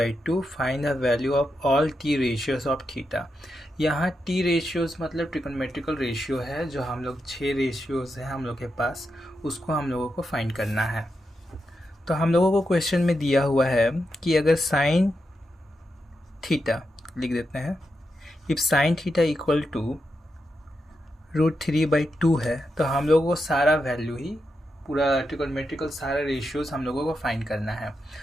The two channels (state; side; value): normal; both; correlation 0.86